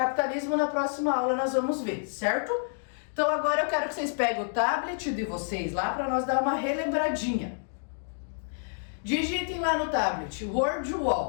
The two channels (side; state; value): right; silent; digital silence